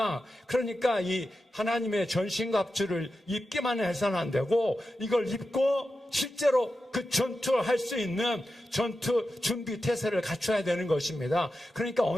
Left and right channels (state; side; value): normal; both; correlation 0.91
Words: 그러니까 이 하나님의 전신갑주를 입기만 해서는 안 되고 이걸 입고 실제로 그 전투를 할 수 있는 전투 준비 태세를 갖춰야 되는 것입니다. 그러니까